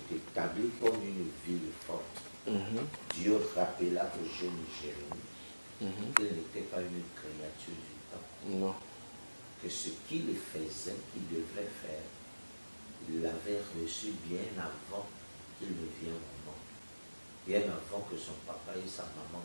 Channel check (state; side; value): inverted; both; correlation -1.00